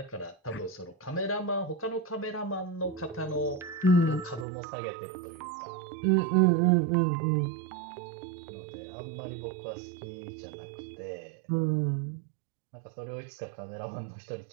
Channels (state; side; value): drops out; left; at 4.5 s